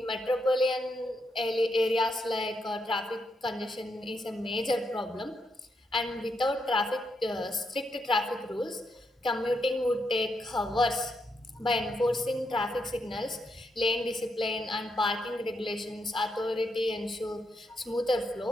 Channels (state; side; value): normal; both; correlation 0.81